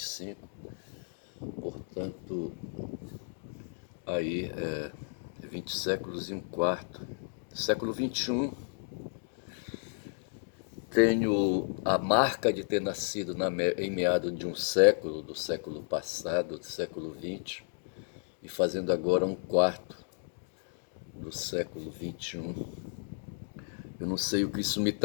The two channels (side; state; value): right; silent; digital silence